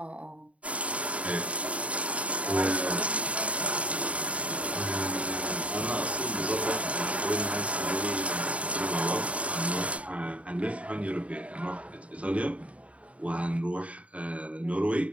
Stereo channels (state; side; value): late; left; 0.065 ms